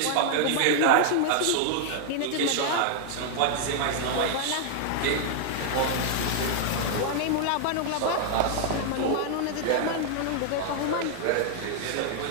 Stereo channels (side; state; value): both; different; correlation -0.01